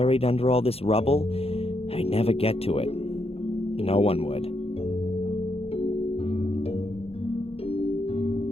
under all this rubble, I'd never get to it. No one would.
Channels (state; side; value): late; right; 0.28 ms